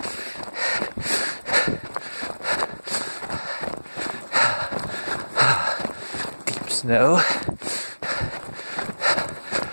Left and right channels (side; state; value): both; inverted; correlation -1.00